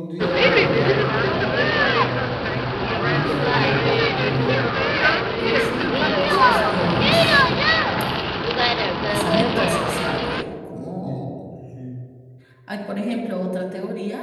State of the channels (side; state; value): both; identical; correlation 1.00